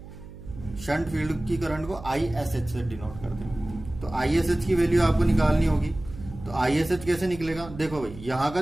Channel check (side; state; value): right; noise; hum, 15 dB below the sound